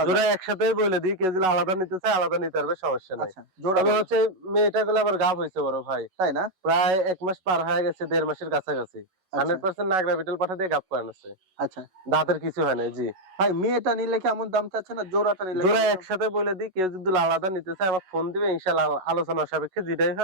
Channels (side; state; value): left; late; 11 ms